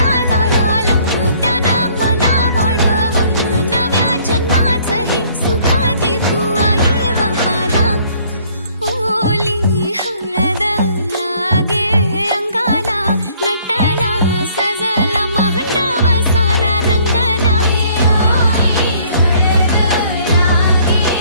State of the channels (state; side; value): inverted; both; correlation -0.60